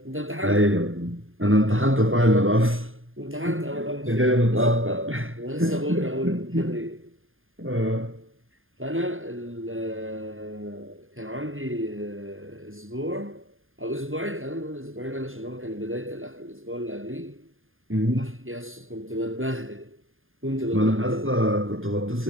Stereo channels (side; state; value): left; late; 0.59 ms